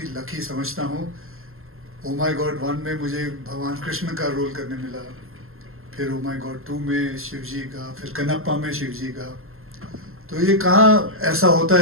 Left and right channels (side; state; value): left; late; 0.61 ms